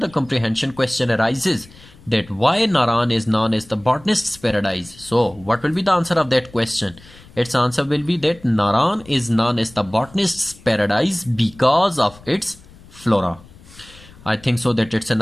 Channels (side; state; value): left; noise; rumble, 23 dB below the sound